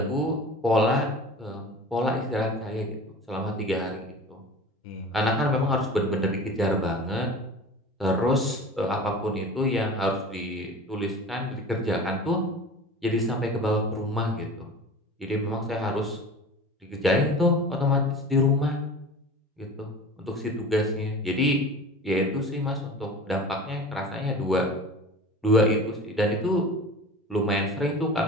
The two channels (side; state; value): both; normal; correlation 0.37